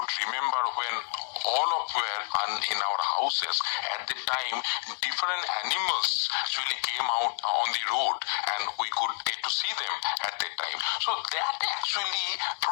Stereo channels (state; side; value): silent; right; 59 dB below the other